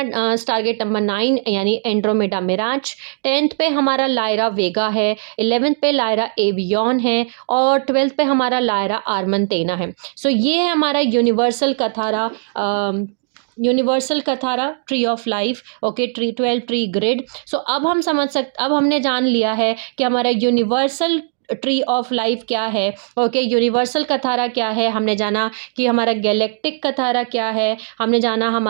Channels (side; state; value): left; silent; digital silence